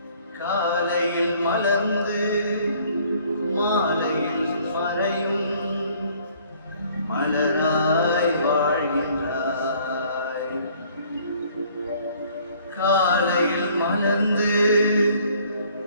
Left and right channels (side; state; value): both; inverted; correlation -0.59